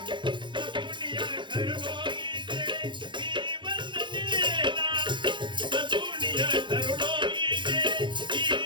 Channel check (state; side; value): late; left; 0.23 ms